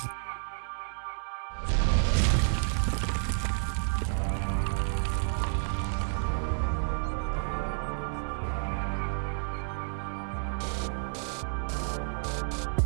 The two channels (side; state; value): left; silent; 57 dB below the other